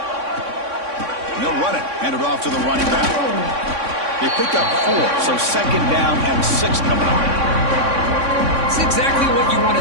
And they'll run it. Hand it off to the running back. They pick up 4, so 2nd down and 6 coming up. It's exactly what you want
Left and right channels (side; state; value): left; late; 3.6 ms